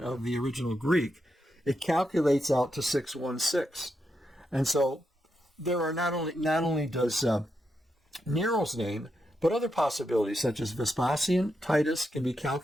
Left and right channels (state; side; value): normal; both; correlation 0.84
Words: the original Greek, it calculates out to 616. And so there are not only does Nero's name, but other possibilities such as Vespasian, Titus can be